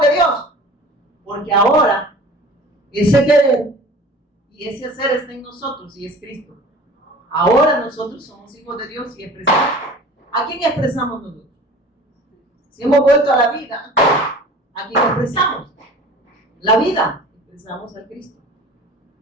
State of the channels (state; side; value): normal; both; correlation 0.42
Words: de Dios? Porque ahora ese querer y ese hacer está en nosotros y es Cristo. Ahora nosotros somos hijos de Dios y expresamos. ¿A quién expresamos nosotros? Si hemos vuelto a la vida, ¿a quién expresamos? La vida, expresamos al Cristo